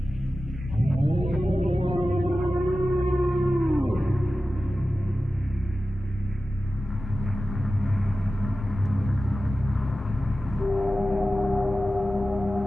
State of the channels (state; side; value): normal; both; correlation 0.94